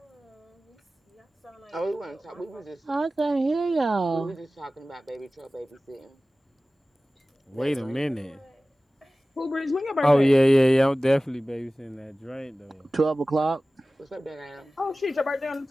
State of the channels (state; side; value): normal; both; correlation 0.97